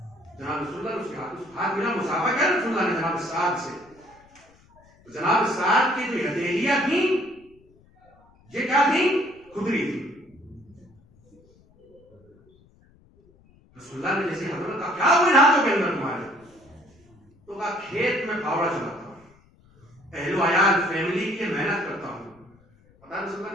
جناب رسول اللہ اس کے ہاتھ ملا، مسافہ کیا رسول اللہ نے جناب سعد سے، تو جناب سعد کی جو ہتھیلیاں تھیں، یہ کیا تھیں؟ کھدری تھی۔ رسول اللہ نے جیسے حضرت کا کیا ہوئے ہاتھوں کے اندر تمہارے، تو کہا کھیت میں پھاوڑا چلاتا ہوں، اہل و عیال فیملی کی محنت کرتا ہوں۔ پتا رسول اللہ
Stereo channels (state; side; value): noise; left; rumble, 30 dB below the sound